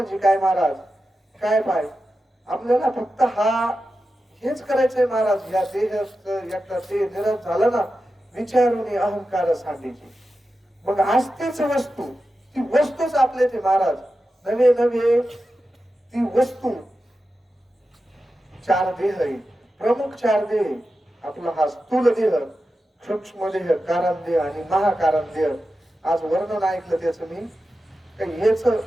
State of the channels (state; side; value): normal; both; correlation 0.91